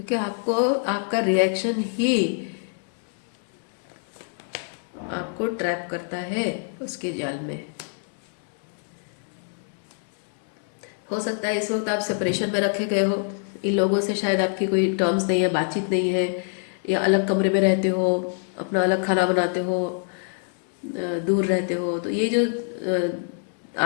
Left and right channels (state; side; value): silent; right; 61 dB below the other